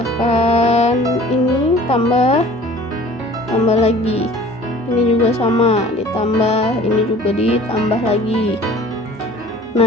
ini, tambah lagi, ini juga sama, ditambah, ini juga ditambah lagi.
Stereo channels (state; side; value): normal; both; correlation 0.47